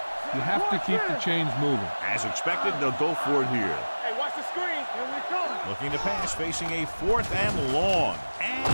you have to keep the chains moving. As expected, they'll go for it here. Hey, watch the screen. Here we come. Looking to pass, facing a 4th and long. And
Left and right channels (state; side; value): inverted; both; correlation -1.00